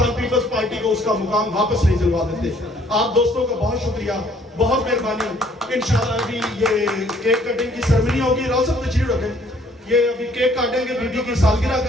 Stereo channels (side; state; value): both; normal; correlation 0.61